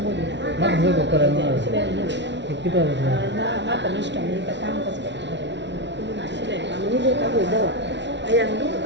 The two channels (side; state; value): left; late; 0.51 ms